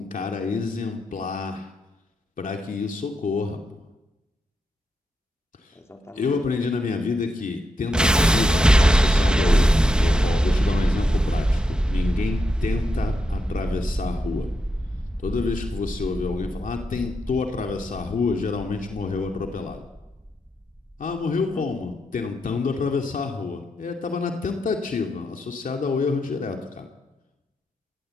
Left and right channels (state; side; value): normal; both; correlation 0.83